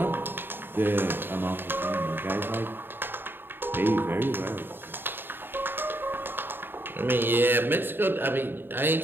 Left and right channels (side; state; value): left; late; 0.098 ms